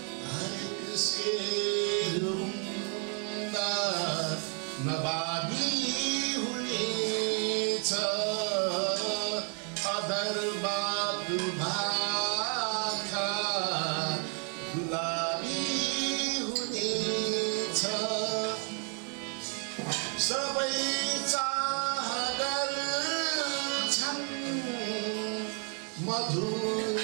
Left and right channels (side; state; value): left; quieter; 39.7 dB